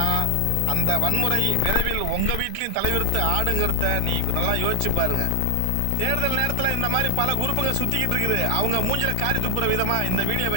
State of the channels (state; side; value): different; both; correlation 0.00